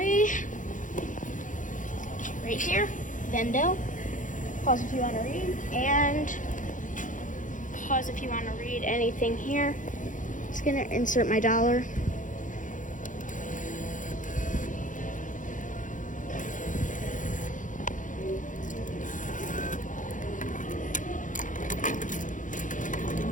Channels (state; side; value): late; right; 0.37 ms